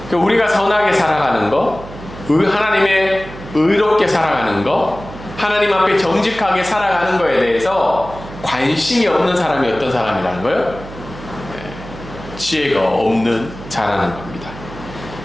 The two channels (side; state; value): right; noise; hum, 14 dB below the sound